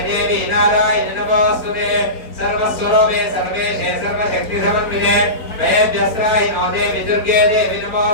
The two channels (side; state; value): right; late; 4.4 ms